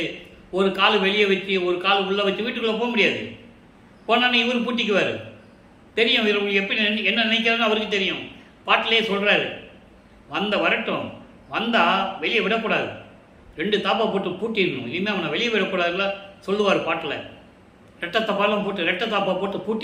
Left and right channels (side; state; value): both; identical; correlation 1.00